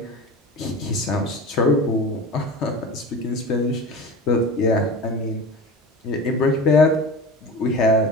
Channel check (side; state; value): both; normal; correlation 0.32